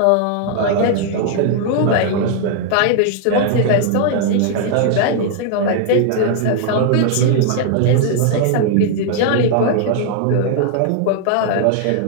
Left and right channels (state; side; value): different; both; correlation 0.00